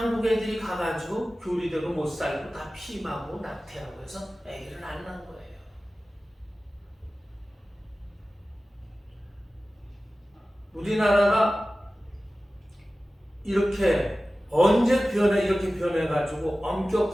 애들이 가가지고 교리대로 못 살고 다 피임하고 낙태하고 해서 애기를 안 낳은 거예요. 우리나라가 이렇게 언제 이렇게 변해가지고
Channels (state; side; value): normal; both; correlation 0.96